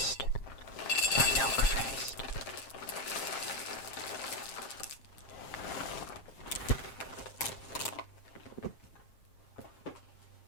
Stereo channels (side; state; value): right; late; 7.5 ms